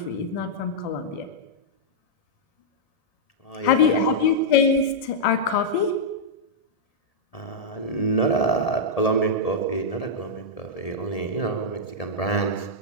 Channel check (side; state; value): right; late; 1.7 ms